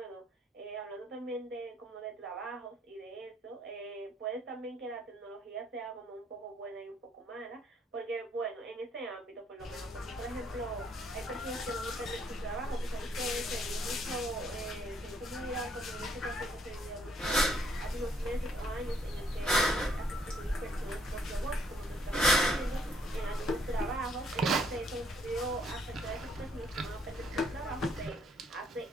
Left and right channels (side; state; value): both; normal; correlation 0.69